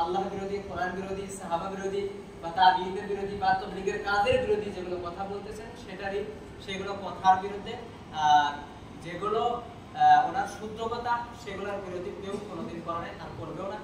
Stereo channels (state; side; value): identical; both; correlation 1.00